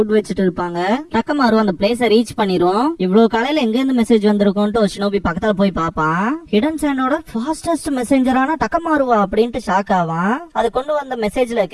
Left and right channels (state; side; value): identical; both; correlation 1.00